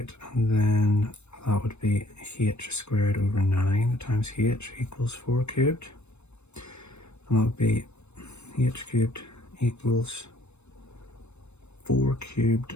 and then that would be h squared over 9 times h equals 4 cubed. And that would be h cubed equals 4 cubed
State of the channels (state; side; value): late; right; 0.81 ms